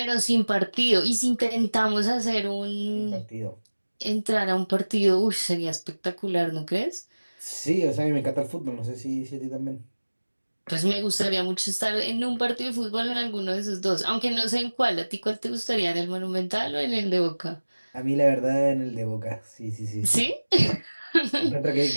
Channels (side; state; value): both; inverted; correlation -1.00